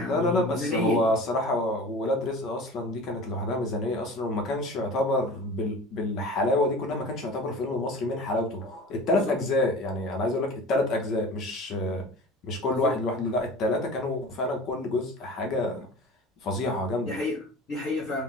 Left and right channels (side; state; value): both; normal; correlation 0.38